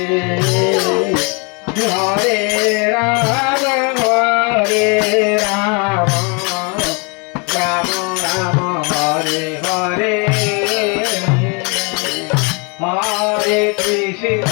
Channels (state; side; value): quieter; right; 32.9 dB